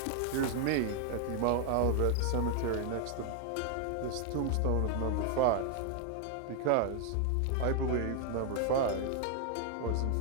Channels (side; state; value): both; different; correlation 0.00